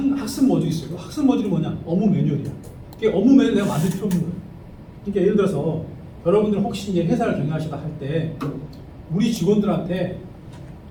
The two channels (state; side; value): identical; both; correlation 1.00